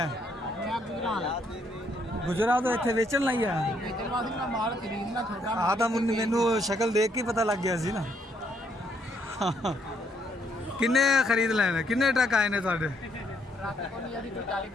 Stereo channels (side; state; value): both; normal; correlation 0.71